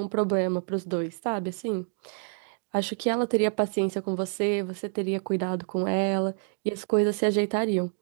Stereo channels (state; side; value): silent; left; digital silence